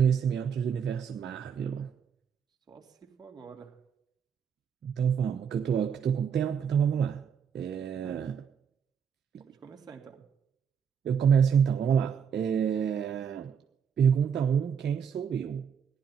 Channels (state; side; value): quieter; left; 7.3 dB